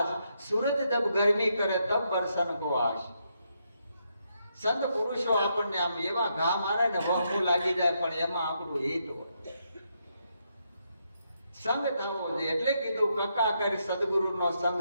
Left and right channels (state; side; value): inverted; both; correlation -0.79